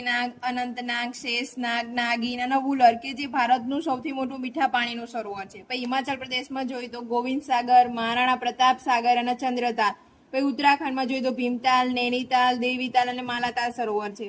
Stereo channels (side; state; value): both; identical; correlation 1.00